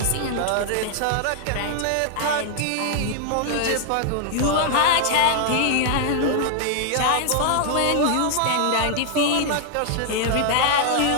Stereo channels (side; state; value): both; different; correlation 0.00